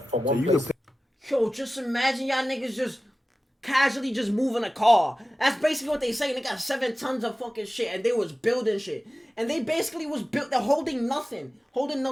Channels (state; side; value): normal; both; correlation 0.95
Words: one place. Yo, just imagine y'all niggas just casually just moving a car. That's basically what they say. They got 7 tons of fucking shit, and they was building shit. And they basically was built, they're holding nothing,